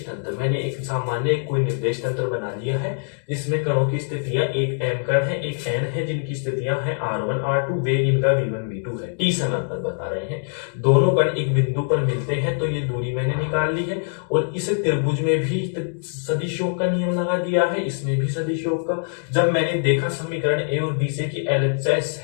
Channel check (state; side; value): silent; right; digital silence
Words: तंत्र, मैंने एक सामान्य कोई निर्देश तंत्र बना लिया है जिसमें कणों की स्थितियां, एक m कण है एक n है जिनकी स्थितियां हैं r1 r2, वेग इनका v1 v2 है, t समय पर बता रहे हैं। दोनों कण एक बिंदु पर मिलते हैं तो ये दूरी मैंने निकाल ली है। और इस त्रिभुज में भी सदिश योग का नियम लगा दिया है, इसमें भी सदिश योग का। जब मैंने देखा समीकरण a और b से कि LHS